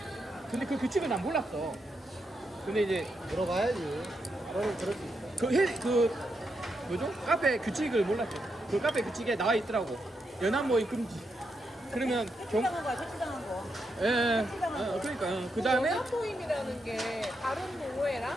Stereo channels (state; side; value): normal; both; correlation 0.83